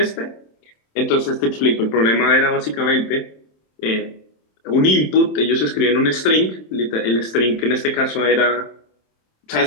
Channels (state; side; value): late; right; 27 ms